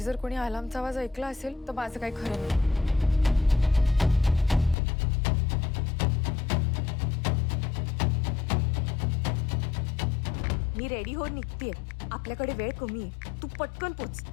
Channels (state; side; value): drops out; right; at 4.8 s